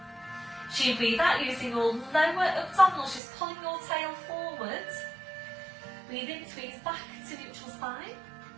So you breathe out using your lower abdominals, just pulling your tail forward. Breathe in, squeeze back to neutral spine.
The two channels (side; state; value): left; drops out; at 3.2 s